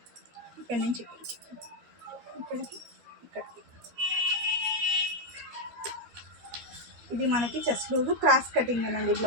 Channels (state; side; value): late; left; 12 ms